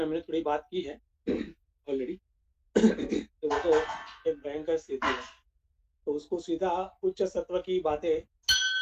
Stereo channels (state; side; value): identical; both; correlation 1.00